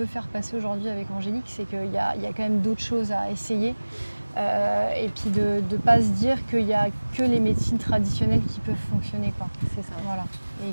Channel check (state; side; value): inverted; both; correlation -1.00